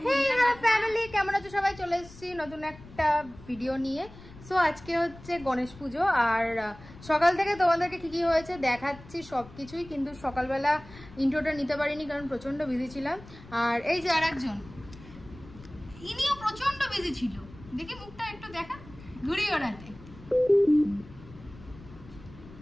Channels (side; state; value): left; noise; rumble, 19 dB below the sound